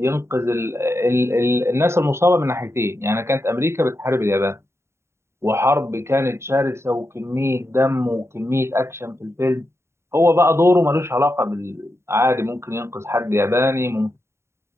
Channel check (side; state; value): left; late; 0.13 ms